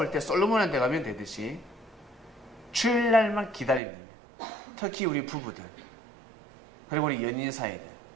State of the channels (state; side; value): drops out; left; at 3.8 s